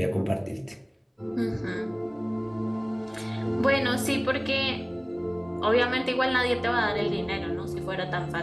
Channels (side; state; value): both; identical; correlation 1.00